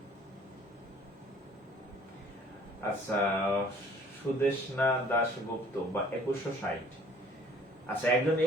আচ্ছা, সুদেশনা দাশগুপ্ত বা 2160। আচ্ছা, একজন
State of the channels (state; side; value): normal; both; correlation 0.55